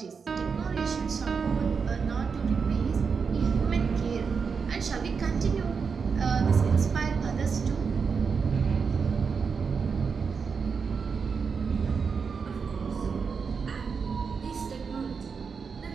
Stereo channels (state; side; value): quieter; left; 5.6 dB